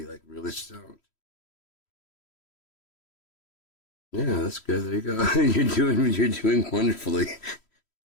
like really stoned. Yeah, that's good. There you go. You're doing wonderfully.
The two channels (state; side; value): late; right; 3.1 ms